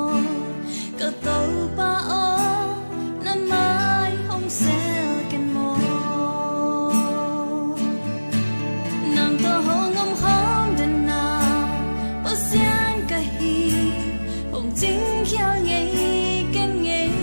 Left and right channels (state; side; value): inverted; both; correlation -1.00